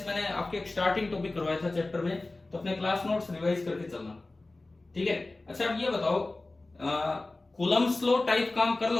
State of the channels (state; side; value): quieter; right; 3.1 dB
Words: मैंने आपके एक स्टार्टिंग टॉपिक करवाया था चैप्टर में, तो अपने क्लास नोट्स रिवाइज करके चलना, ठीक है। अच्छा, अब ये बताओ कूलम्ब्स लॉ टाइप काम कर